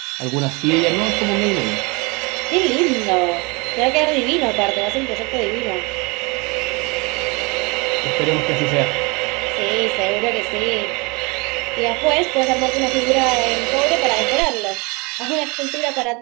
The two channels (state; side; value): quieter; left; 27.8 dB